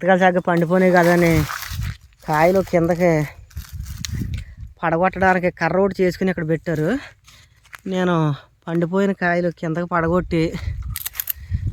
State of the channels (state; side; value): identical; both; correlation 1.00